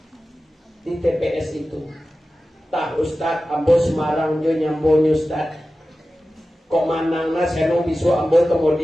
di TPS itu. Tah Ustaz, ambo Semarang jo nyambonyo Ustaz. Kok manang na seno bisu ambo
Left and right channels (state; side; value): normal; both; correlation 0.95